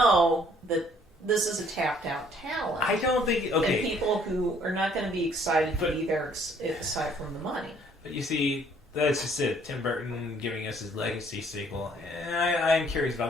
that this is a tapped-out talent. I don't think... Okay. And people who are not going to be excited to be there aside from the money. But you see, that's just it. Tim Burton giving us his Legacy sequel. I'm curious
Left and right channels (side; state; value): both; normal; correlation 0.61